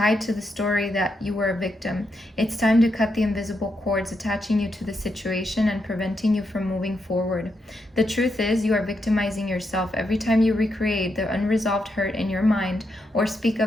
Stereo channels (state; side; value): normal; both; correlation 0.82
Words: to the story that you were a victim. It's time to cut the invisible cords attaching you to the situation and preventing you from moving forward. The truth is, you are victimizing yourself every time you recreate the unresolved hurt in your mind or speak